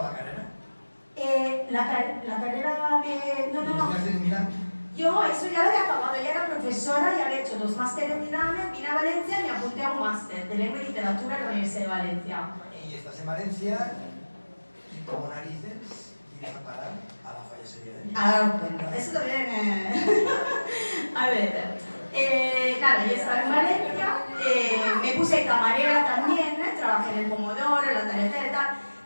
la carrera. La carrera de... No. En Milán. Yo eso ya lo había acabado, ya era profesora, ya había hecho 2 másteres en Milán, vine a Valencia y me apunté a un máster de lengua y literatura en la Universidad de Valencia. Y estás en Valencia y como narices vienes a parar a la Falla Sevilla. Ahora os cuento, eso también... A ver, nada, yo estaba en Valencia, me puse camarera también, trabajé en el Pomodoro, en la tarjeta y tal.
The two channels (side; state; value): both; inverted; correlation -1.00